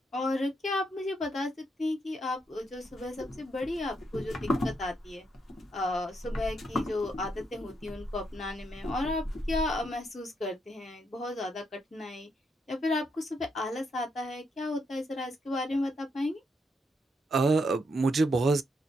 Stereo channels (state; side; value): normal; both; correlation 0.78